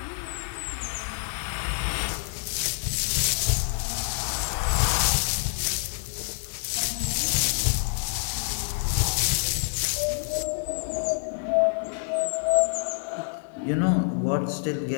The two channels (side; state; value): right; silent; digital silence